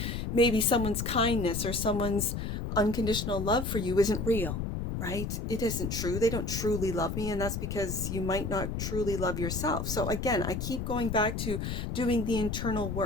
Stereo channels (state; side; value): noise; left; rumble, 3 dB below the sound